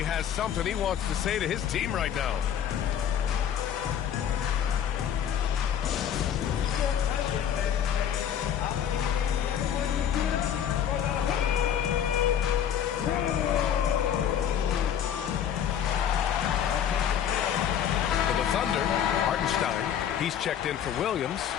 has something he wants to say to his team right now. Thunder, Hartenstein, he's checked in for Williams.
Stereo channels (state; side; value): quieter; right; 9.2 dB